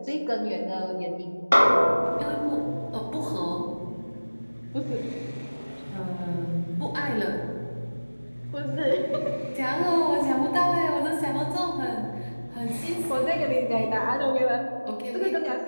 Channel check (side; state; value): both; inverted; correlation -1.00